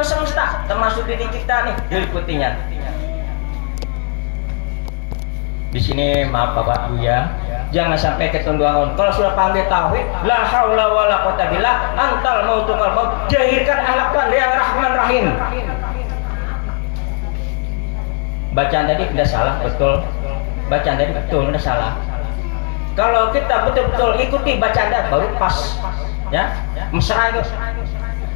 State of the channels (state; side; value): quieter; right; 39.3 dB